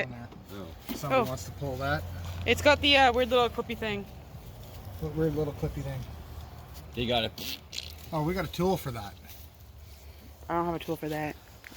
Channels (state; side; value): identical; both; correlation 1.00